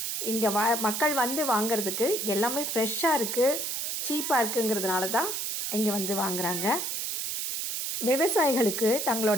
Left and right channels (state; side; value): noise; right; hiss, 2 dB below the sound